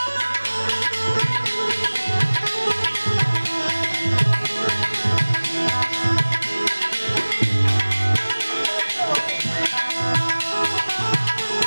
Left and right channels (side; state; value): both; inverted; correlation -1.00